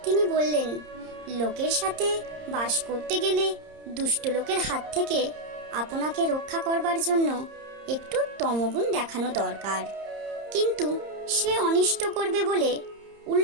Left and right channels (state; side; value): late; left; 30 ms